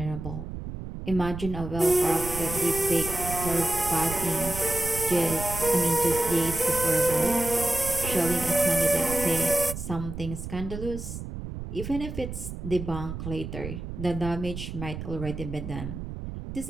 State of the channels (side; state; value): right; noise; rumble, 8 dB below the sound